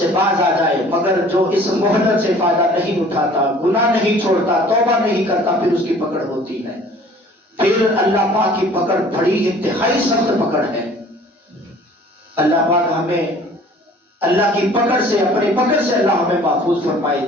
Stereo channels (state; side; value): normal; both; correlation 0.50